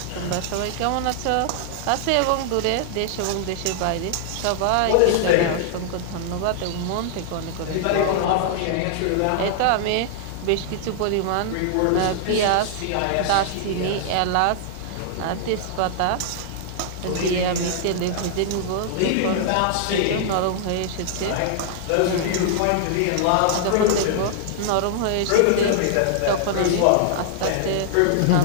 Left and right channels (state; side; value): different; both; correlation -0.01